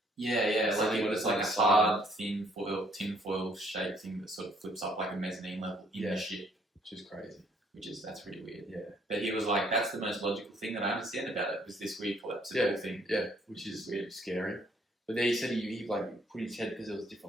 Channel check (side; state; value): both; normal; correlation 0.65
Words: Yeah, like it was like a hard, tin foil shaped thing that sort of flips up like a mezzanine level in the ship. Which is crazy. That's really weird. Yeah. But he was like, that's the most logical thing that I understand about it, was this weird collapsible thing. Yeah, which is weird, scary. But then he said he like put his head, because there was